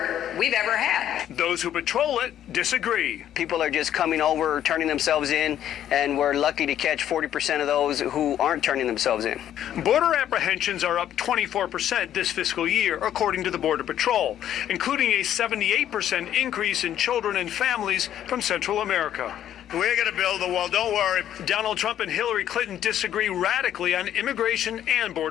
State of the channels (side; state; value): right; quieter; 11.0 dB